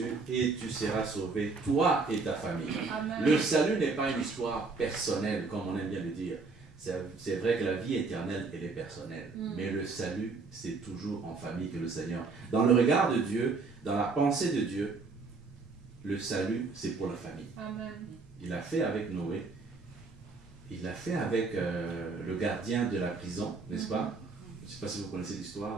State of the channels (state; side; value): quieter; left; 4.2 dB